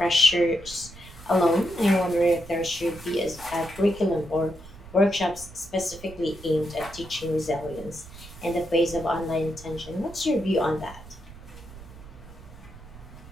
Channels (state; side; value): noise; right; rumble, 17 dB below the sound